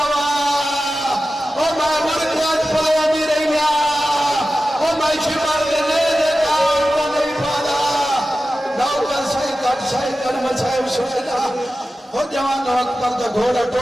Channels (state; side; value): normal; both; correlation 0.94